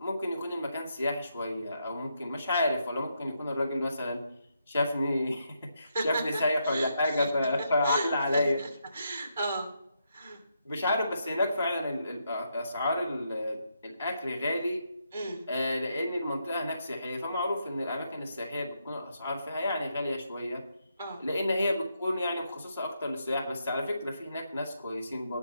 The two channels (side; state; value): both; inverted; correlation -0.80